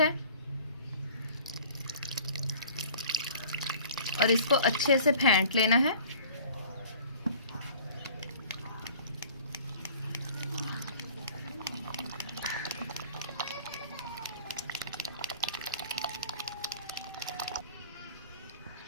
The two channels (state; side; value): inverted; both; correlation -0.47